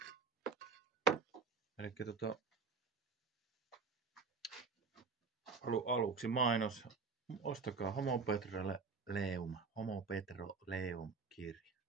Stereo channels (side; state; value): left; quieter; 4.8 dB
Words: Eli aluksi mainos. Ostakaa Homo Petroleum kirja.